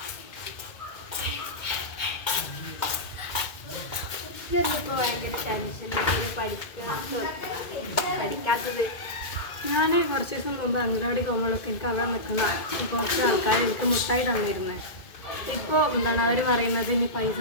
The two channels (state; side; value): late; right; 2.2 ms